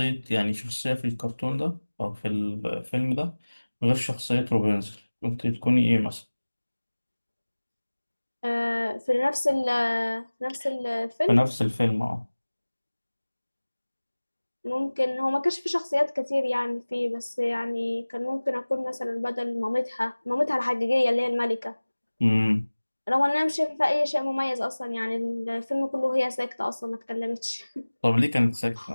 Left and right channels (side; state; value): both; inverted; correlation -1.00